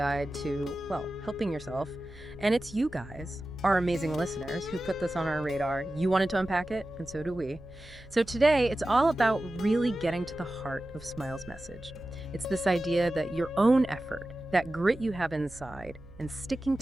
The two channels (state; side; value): noise; right; hum, 21 dB below the sound